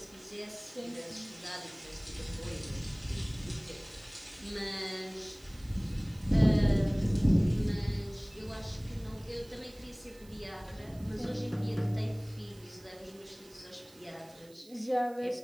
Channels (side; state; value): right; noise; hiss, 24 dB below the sound